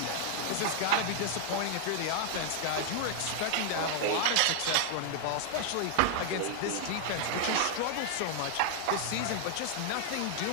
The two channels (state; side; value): different; both; correlation 0.00